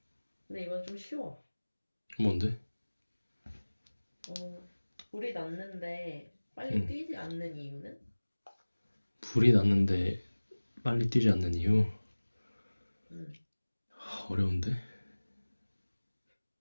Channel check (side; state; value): both; inverted; correlation -1.00